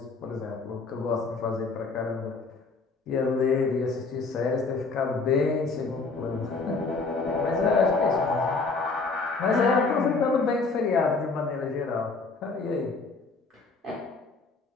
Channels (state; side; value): quieter; right; 4.0 dB